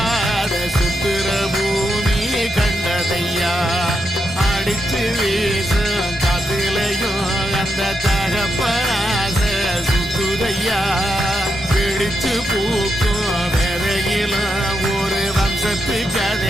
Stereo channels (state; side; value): normal; both; correlation 0.84